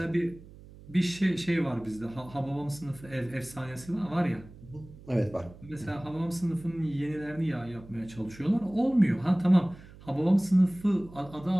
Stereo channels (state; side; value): noise; right; hum, 19 dB below the sound